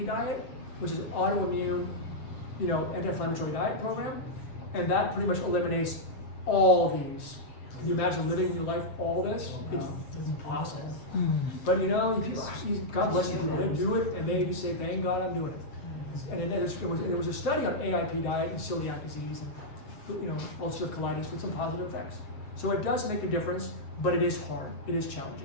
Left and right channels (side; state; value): right; late; 7.4 ms